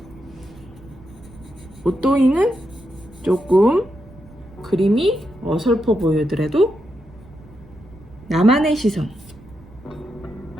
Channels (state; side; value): noise; right; rumble, 22 dB below the sound